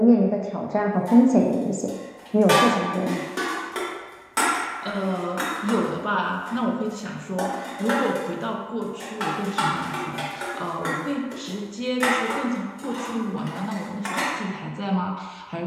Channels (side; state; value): both; identical; correlation 1.00